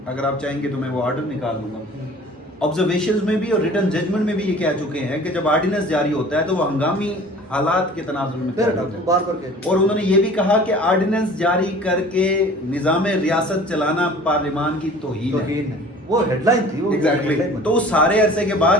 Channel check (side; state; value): both; normal; correlation 0.46